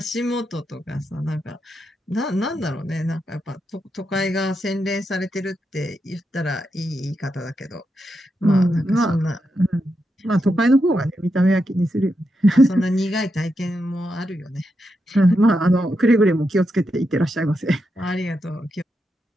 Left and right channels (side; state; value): both; normal; correlation 0.85